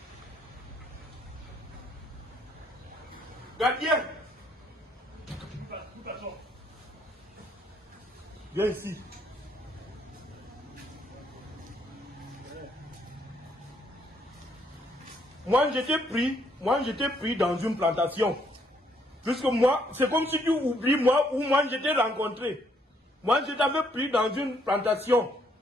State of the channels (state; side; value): normal; both; correlation 0.70